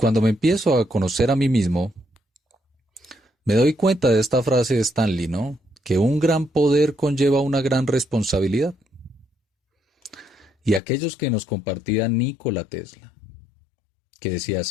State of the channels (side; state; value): right; drops out; at 10.8 s